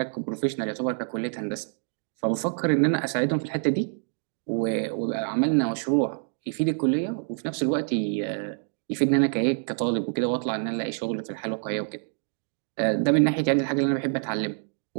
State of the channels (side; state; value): left; silent; 60 dB below the other